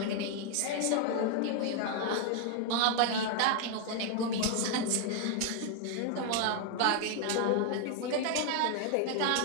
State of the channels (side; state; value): both; different; correlation 0.00